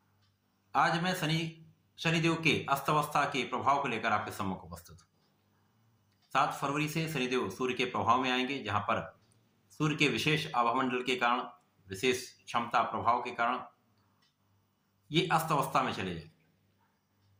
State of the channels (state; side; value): identical; both; correlation 1.00